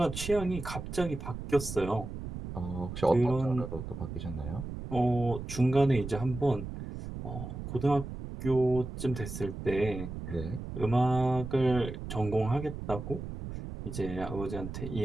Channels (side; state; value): right; noise; rumble, 8 dB below the sound